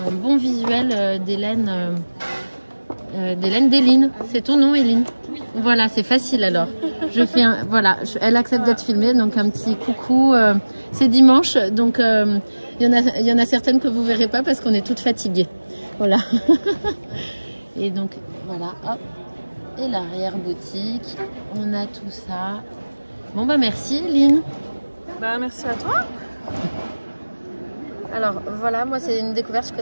bon visuel des laines d'Eline. C'est ton nom, Eline? Voilà, c'est facile alors. Je fais voilà, elle accepte d'être filmée, donc un petit coucou. C'est dimanche, donc il y en a certaines que vous verrez pas parce qu'on est toutes fatiguées. Voilà. Et donc voilà, hop. Et l'arrière boutique, on a tout ça. Bon bah merci, Eline. Bah merci à toi. Alors voilà, moi c'est une découverte que je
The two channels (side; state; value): both; inverted; correlation -1.00